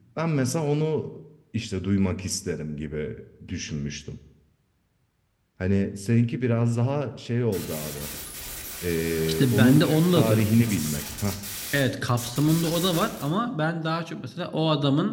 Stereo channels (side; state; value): both; identical; correlation 1.00